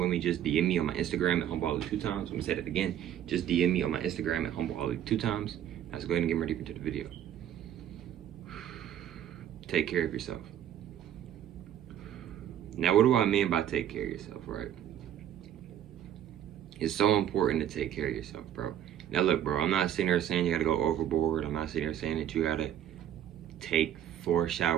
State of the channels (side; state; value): left; quieter; 10.7 dB